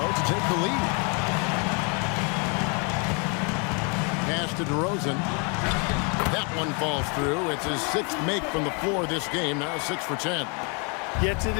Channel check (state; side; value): quieter; right; 34.9 dB